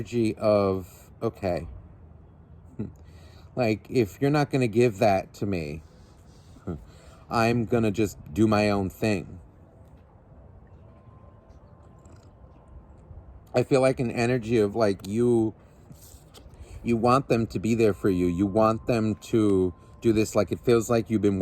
of, okay, Like, if you're not going to give that to me, I'm going to just do my own thing. I feel like an energy of like you want them to be there for you. You want them to do this. Like, it feels like you've been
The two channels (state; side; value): identical; both; correlation 1.00